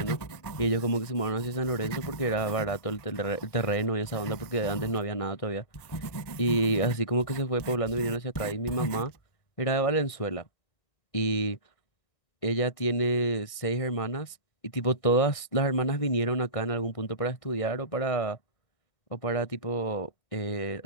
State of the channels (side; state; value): right; late; 1.6 ms